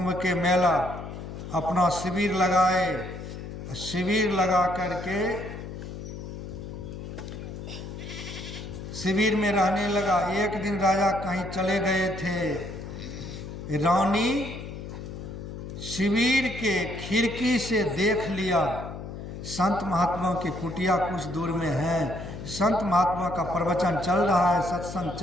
के मेला, अपना शिविर लगाए। शिविर लगा करके शिविर में रहने लगा। एक दिन राजा कहीं चले गए थे। रानी शिविर के खिड़की से देख लिया, संत महात्माओं की कुटिया कुछ दूर में है। संत महात्मा का प्रवचन चल रहा है, सत्संग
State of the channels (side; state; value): left; noise; hum, 9 dB below the sound